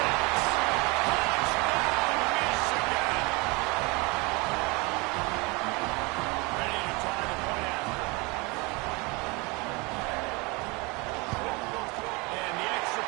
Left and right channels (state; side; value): quieter; left; 27.0 dB